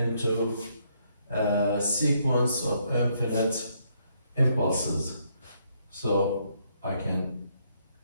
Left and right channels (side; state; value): both; inverted; correlation -0.73